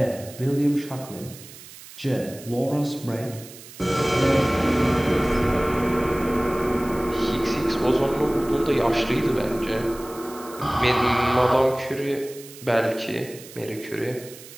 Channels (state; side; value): noise; right; hiss, 17 dB below the sound